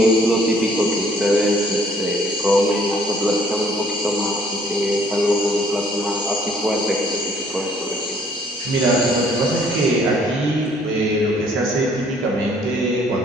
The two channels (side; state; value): both; normal; correlation 0.61